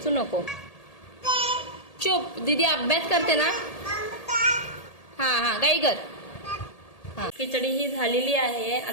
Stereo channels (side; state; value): right; late; 1.8 ms